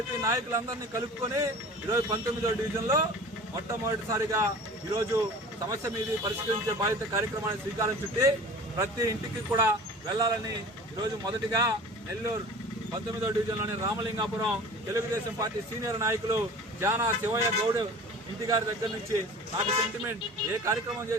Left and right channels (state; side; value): normal; both; correlation 0.40